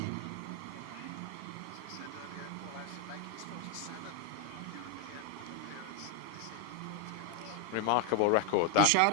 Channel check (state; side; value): different; both; correlation 0.01